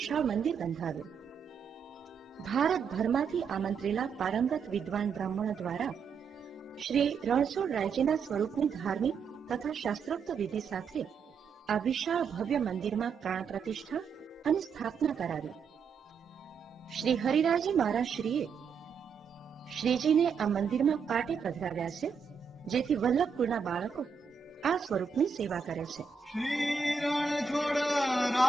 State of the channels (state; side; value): quieter; left; 5.9 dB